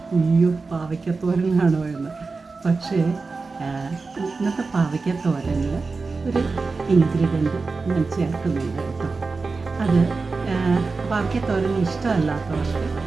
അയ്യോ പാവയ്ക്കാത്തോരനാണോ എന്ന്. പക്ഷേ ഇന്നത്തെ പാവയ്ക്കാത്തോരനിൽ ഒരു ഇൻഗ്രീഡിയൻറ്റ് ഞാൻ ചേർക്കുന്നുണ്ട് കേട്ടോ. അത് പാവയ്ക്കാത്തോരൻ ഇഷ്ടമല്ലാത്തവർക്ക്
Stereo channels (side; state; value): left; quieter; 4.1 dB